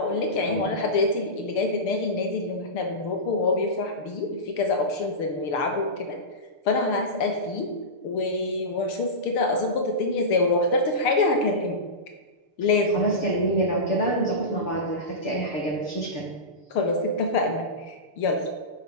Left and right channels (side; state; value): right; late; 6.7 ms